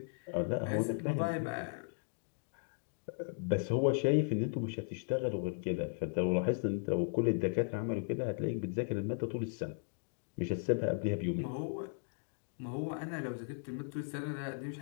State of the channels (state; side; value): silent; right; digital silence